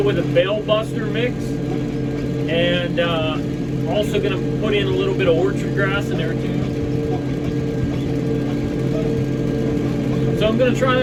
with a bale buster mix, and also going to put in a little bit of orchard grass in there too. So I'm going to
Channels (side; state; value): both; identical; correlation 1.00